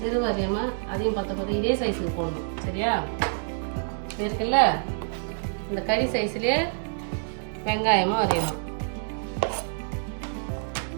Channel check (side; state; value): left; silent; digital silence